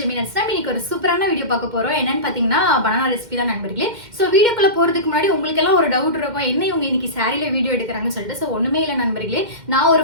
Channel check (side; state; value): left; late; 2.1 ms